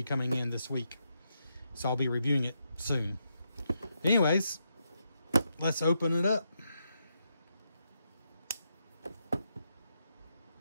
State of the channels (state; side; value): inverted; both; correlation -0.83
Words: coming in this week. So I'll be reviewing it soon. Anyways, let's open it up.